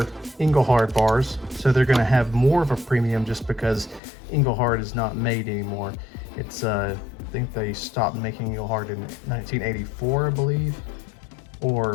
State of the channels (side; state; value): right; drops out; at 4.0 s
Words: Engelhard bars, so they're going to have more of a premium just because Engelhard is not made anymore. It's I think they stopped making Engelhard in 1984, I believe,